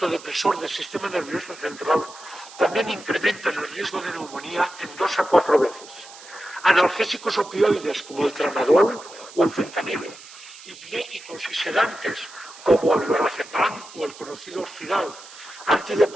depresor del sistema nervioso central también incrementan el riesgo de neumonía en 2 a 4 veces. Analgésicos opioides como el tramadol o el fentanilo, hipnóticos y sedantes como el lorazepam o el conocido Orfidal,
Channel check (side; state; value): right; noise; hiss, 18 dB below the sound